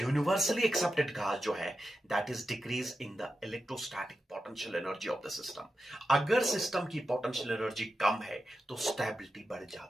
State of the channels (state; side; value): normal; both; correlation 0.90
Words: यूनिवर्सली एक्सेप्टेड काज जो है, that is decrease in the electrostatic potential energy of the system. अगर सिस्टम की पोटेंशियल एनर्जी कम है तो स्टेबिलिटी बढ़